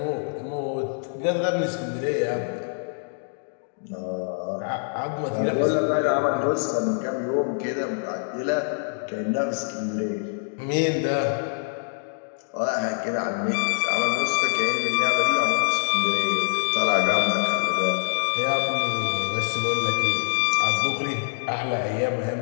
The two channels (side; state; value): right; silent; digital silence